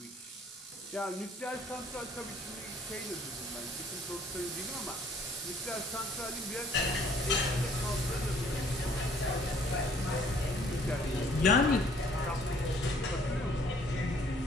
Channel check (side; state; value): both; normal; correlation 0.59